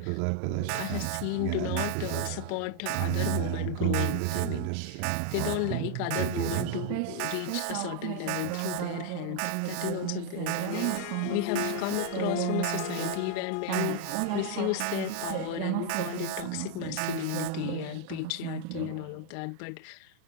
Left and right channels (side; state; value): both; different; correlation 0.00